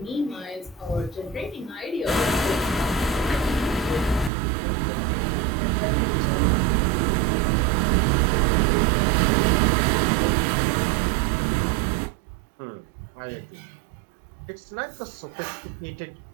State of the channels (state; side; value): drops out; left; at 4.3 s